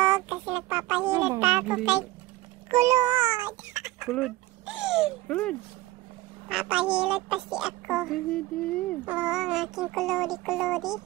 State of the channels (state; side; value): quieter; left; 18.5 dB